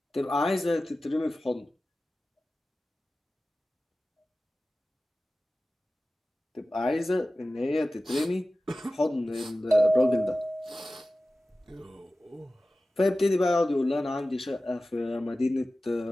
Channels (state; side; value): normal; both; correlation 0.95